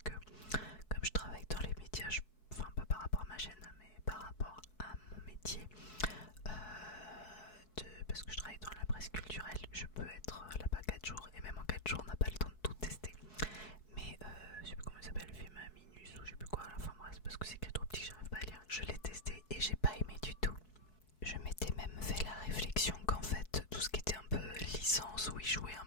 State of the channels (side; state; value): right; late; 4.7 ms